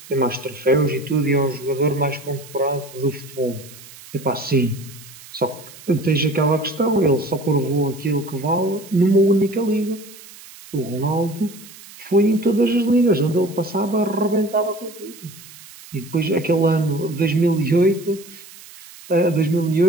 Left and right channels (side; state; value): right; noise; hiss, 19 dB below the sound